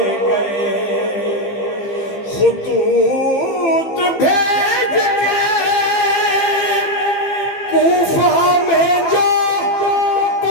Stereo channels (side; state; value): right; late; 15 ms